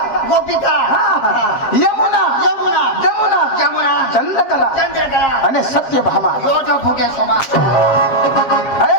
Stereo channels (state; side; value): late; right; 7.5 ms